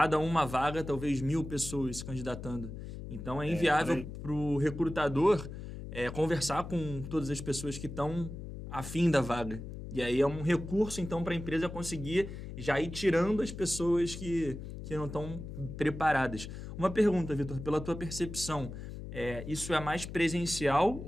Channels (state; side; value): noise; left; hum, 9 dB below the sound